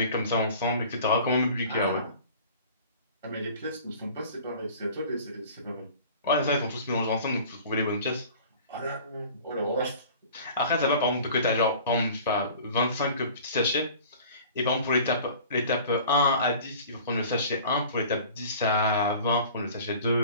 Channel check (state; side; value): inverted; both; correlation -0.44